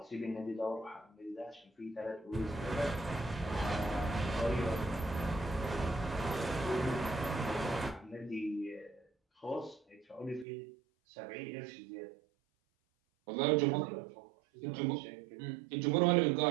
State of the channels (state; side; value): drops out; left; at 10.5 s